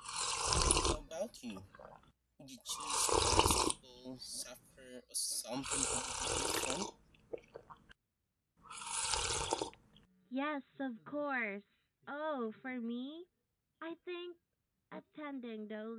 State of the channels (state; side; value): identical; both; correlation 1.00